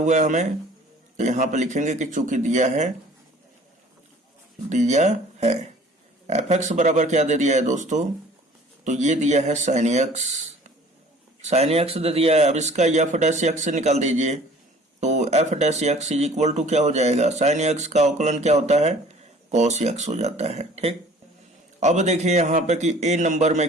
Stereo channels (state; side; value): normal; both; correlation 0.50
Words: है हमें, तो यहाँ पे लिखेंगे कि चूंकि दिया है f(x) बराबर क्या दे दिया है दोस्तों, तो ये दिया है sin x दे दिया है। अब इसका f' से निकाल दीजिए, तो f' इक्वल टू क्या हो जाएगा, sin x का अवकलन क्या होता है, cos x हो जाता है। ठीक, अब देखिए यहाँ पे कि a नंबर